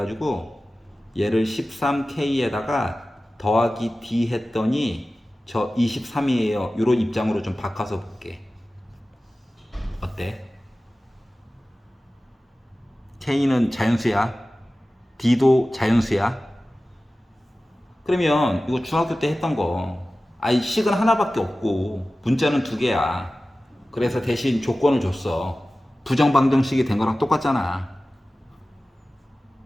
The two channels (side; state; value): both; normal; correlation 0.96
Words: 얘를 13K에다가 더하기 D 했더니 저 23이에요. 이런 입장으로 좀 바꿔서 볼게. 어때? K는 자연수야. D도 자연수야. 그러면 이거 중학교 때 했던 거. 아이 식은 하나밖에 없고 문자는 두 개야. 그래서 대신 조건을 줬어. 부정방정식이 된 거랑 똑같잖아.